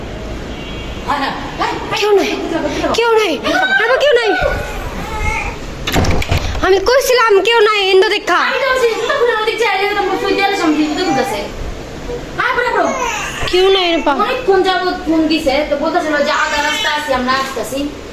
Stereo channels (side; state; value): both; identical; correlation 1.00